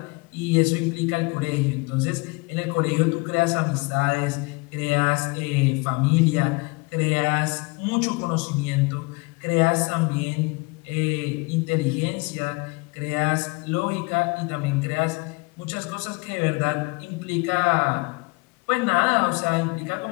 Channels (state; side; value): quieter; right; 26.9 dB